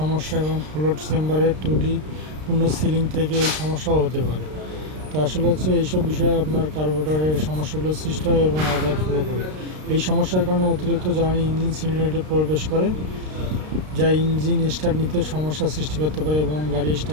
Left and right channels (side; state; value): left; late; 33 ms